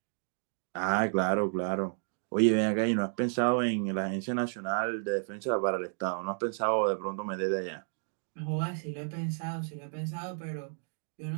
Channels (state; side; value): silent; left; 57 dB below the other